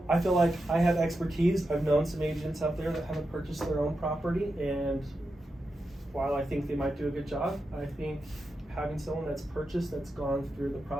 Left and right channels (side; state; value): both; normal; correlation 0.88